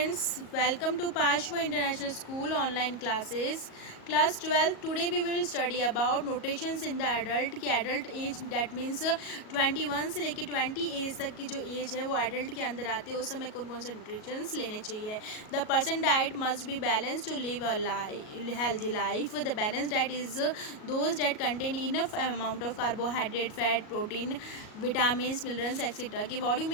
welcome to Pashwa International School online classes. Class 12, today we will study about notations in the adult की adult age that means 21 से लेकर 20 as तक की जो as है वो adult के अंदर आती है, उस समय कौन कौन से notations लेने चाहिए. The person diet must be balanced to live a healthy life. The balanced diet is those that contain enough amount of carbohydrate, fat, protein, vitamins, minerals etc. कि what do you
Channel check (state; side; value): late; right; 37 ms